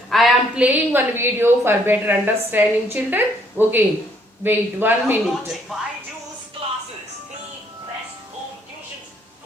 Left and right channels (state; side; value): normal; both; correlation 0.67